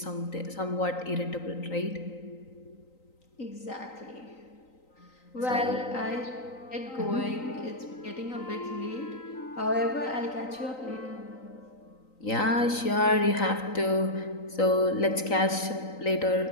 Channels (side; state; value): right; late; 3.9 ms